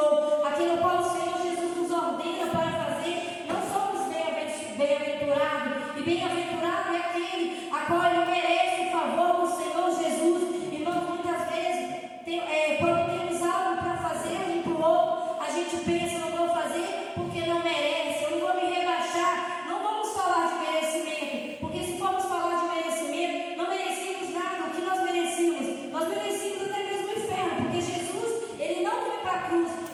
aquilo qual o Senhor Jesus nos ordena para fazer, não somos bem-aventurados. E bem-aventurado é aquele a qual ele merece o favor do Senhor Jesus. Irmão, muitas vezes, quando temos algo para fazer um para o outro, a gente pensa, não vou fazer porque não merece, eu não vou me rebaixar. Não vamos falar de merecimento, porque se formos falar de merecimento, não merecemos nada. O que nós merecemos? Nós merecemos até mesmo o inferno, porque Jesus, ele não foi para a cruz,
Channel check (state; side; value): identical; both; correlation 1.00